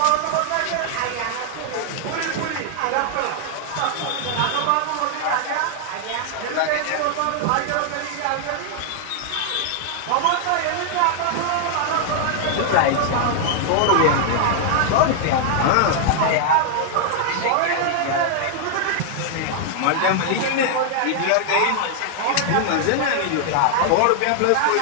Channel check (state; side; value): different; both; correlation 0.00